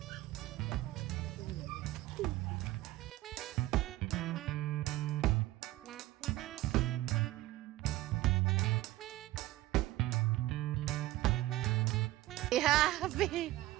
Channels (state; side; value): quieter; left; 16.8 dB